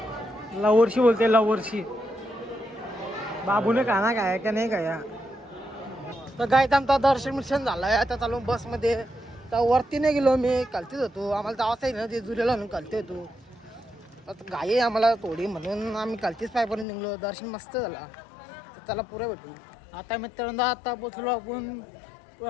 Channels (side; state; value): right; drops out; at 16.9 s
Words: लवर्षी बोलते लवर्षी बाबूने खाना खाया का नाही खाया तर गायत आमचा दर्शन झालाय. आता चालू बसमध्ये. तर वरती नाही गेलो मी, खालतीच होतो. आम्हाला जावंच आहे ना जेजुरीला म्हणून खालती होतो. आता घाई आहे आम्हाला थोडी म्हणून आम्ही खालतीच पायपर्यंत निघलो. दर्शन मस्त झाला. तर त्याला पुरं भेटू. आता मित्रांनो आता पोचलो आपण